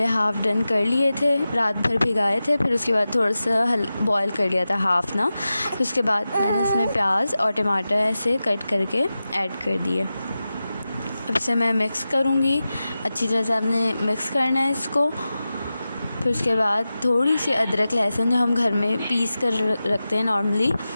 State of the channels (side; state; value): both; inverted; correlation -0.93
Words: हाफ़ डन कर लिए थे, रात भर भिगाए थे, फिर उसके बाद थोड़ा सा बॉयल कर लिया था हाफ़ ना। फिर उसके बाद मैंने इसमें प्याज और टमाटर ऐसे कट करके ऐड कर दिए। अब इसे मैं मिक्स करूँगी, अच्छी तरह से आपने मिक्स करना है इसको। फिर उसके बाद थोड़ी सी अदरक लहसुन जो हम घर में पीस कर रखते हैं नॉर्मली,